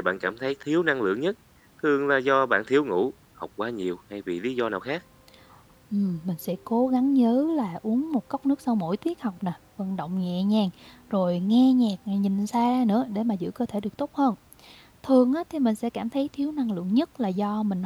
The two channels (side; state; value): both; identical; correlation 1.00